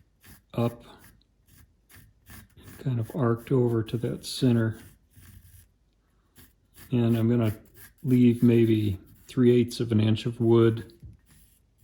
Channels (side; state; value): both; identical; correlation 1.00